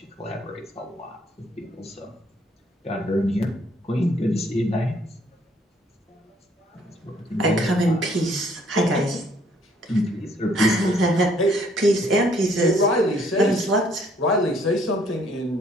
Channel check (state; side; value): normal; both; correlation 0.63